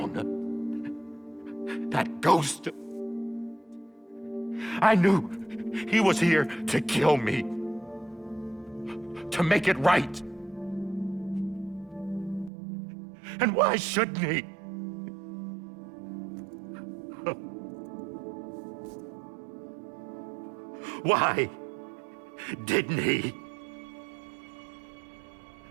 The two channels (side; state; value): left; drops out; at 12.5 s